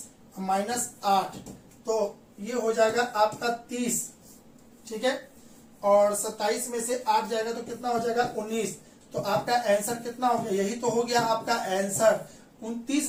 -8, तो ये हो जाएगा आपका 30। ठीक है, और 27 में से 8 जाएगा तो कितना हो जाएगा 19। तो आपका आंसर कितना हो गया, यही तो हो गया आपका आंसर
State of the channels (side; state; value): both; identical; correlation 1.00